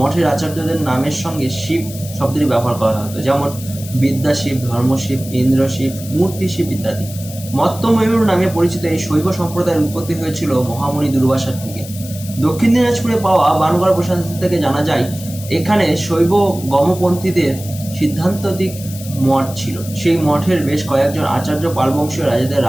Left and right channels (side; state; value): left; noise; hiss, 14 dB below the sound